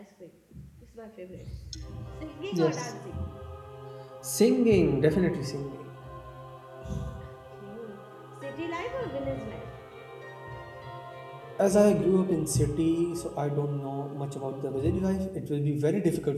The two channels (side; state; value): both; identical; correlation 1.00